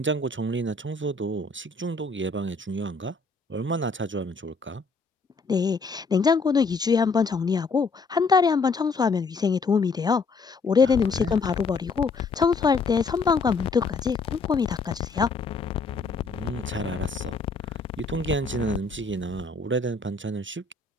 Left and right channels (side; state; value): right; quieter; 4.1 dB